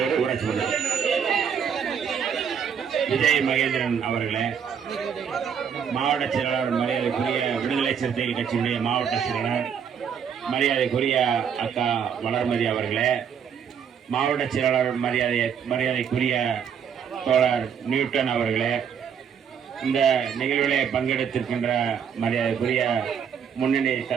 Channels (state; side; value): quieter; left; 7.6 dB